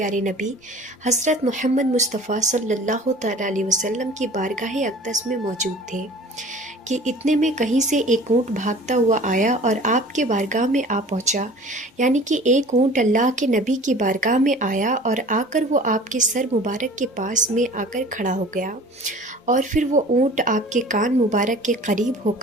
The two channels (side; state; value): both; normal; correlation 0.45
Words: نبی حضرت محمد مصطفیٰ صلی اللہ تعالیٰ علیہ وسلم کی بارگاہ اقدس میں موجود تھے کہ اتنے میں کہیں سے ایک اونٹ بھاگتا ہوا آیا اور آپ کے بارگاہ میں آ پہنچا۔ یعنی کہ ایک اونٹ اللہ کے نبی کی بارگاہ میں آیا اور آ کر وہ آپ کے سر مبارک کے پاس میں آ کر کھڑا ہو گیا، اور پھر وہ اونٹ آپ کے کان مبارک کے قریب ہو